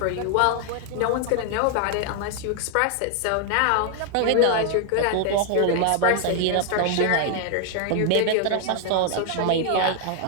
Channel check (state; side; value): different; both; correlation 0.00